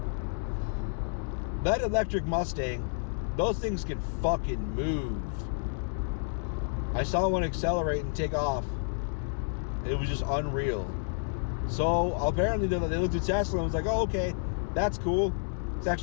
That electric Mustang Those things can fucking move. I saw one accelerate and take off. It was just unreal. So apparently they looked at Tesla and was like, oh, okay, that's cool. It's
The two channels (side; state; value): right; silent; digital silence